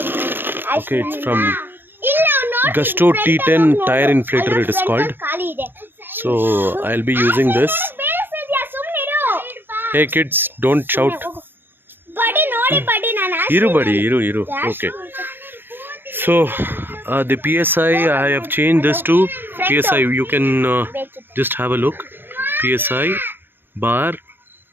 Okay, it's from Gusto T10 tire inflator, it is called. So I'll be using this. Hey kids, don't shout. Iru. Okay. So the PSI, I have changed this to PSI. You can just have a look. PSI bar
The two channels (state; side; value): late; left; 0.099 ms